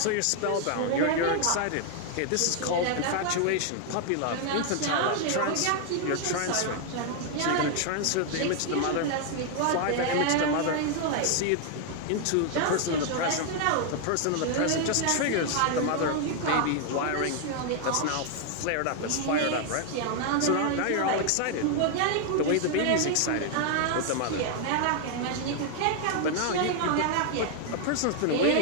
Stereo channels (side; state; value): both; different; correlation 0.00